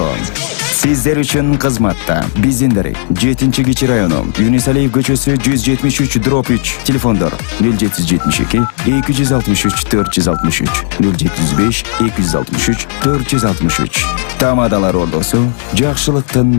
Сиздер үчүн кызматта биздин дарек 7-Кичи району, Юнусалиев көчөсү 173/3, телефондор 0772 263 463, 075 263 463. Тамадалар ордосу,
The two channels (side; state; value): right; silent; 62 dB below the other